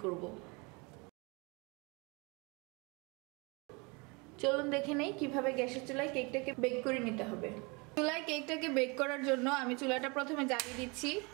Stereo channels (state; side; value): quieter; left; 28.7 dB